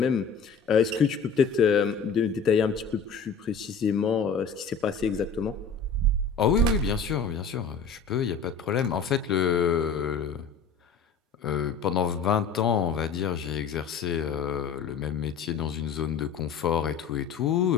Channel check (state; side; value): quieter; right; 5.4 dB